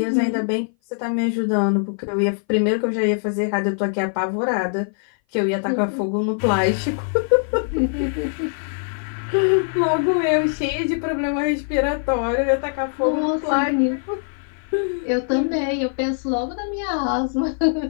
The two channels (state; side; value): silent; right; 58 dB below the other